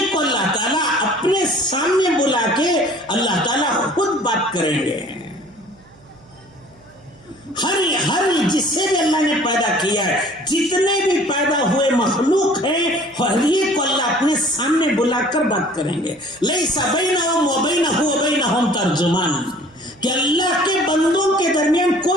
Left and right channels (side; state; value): right; noise; hum, 28 dB below the sound